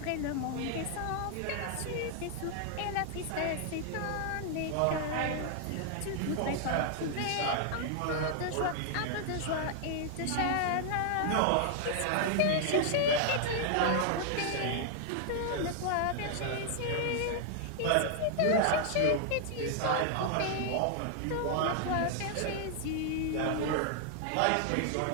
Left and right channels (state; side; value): different; both; correlation 0.00